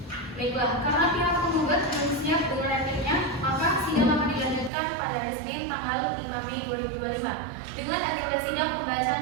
Baiklah, karena pihak penggugat belum siap dengan repliknya, maka sidang akan dilanjutkan pada hari Senin tanggal 5 Mei 2025 dengan agenda sidang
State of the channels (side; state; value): left; drops out; at 4.7 s